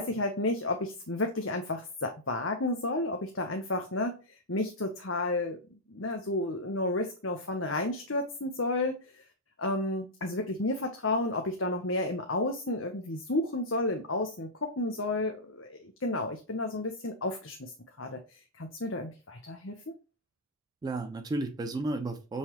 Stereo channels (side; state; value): both; normal; correlation -0.07